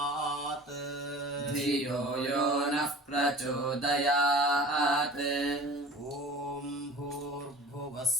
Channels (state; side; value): normal; both; correlation 0.40